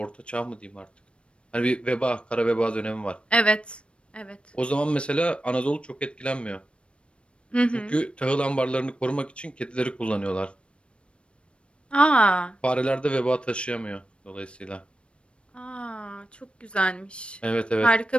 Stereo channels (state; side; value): late; right; 0.058 ms